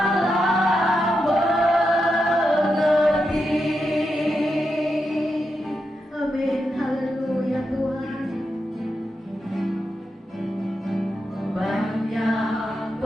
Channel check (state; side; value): normal; both; correlation 0.86